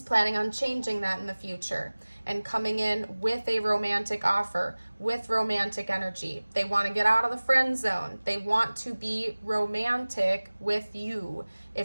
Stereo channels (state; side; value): inverted; both; correlation -1.00